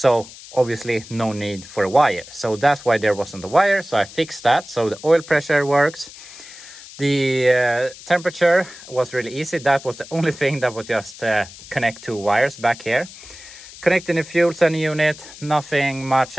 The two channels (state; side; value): noise; left; hiss, 17 dB below the sound